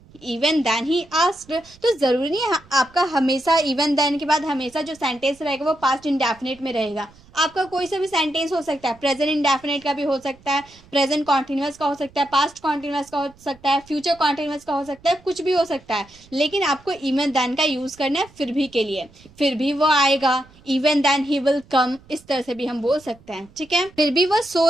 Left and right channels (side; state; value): right; noise; rumble, 26 dB below the sound